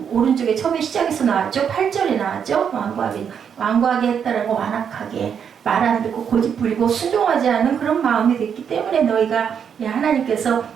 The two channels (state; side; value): quieter; left; 7.6 dB